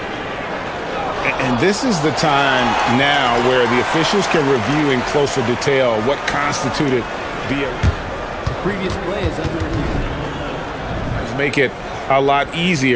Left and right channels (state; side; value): identical; both; correlation 1.00